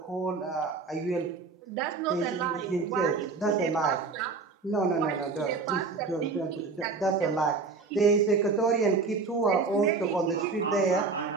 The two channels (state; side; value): quieter; left; 4.4 dB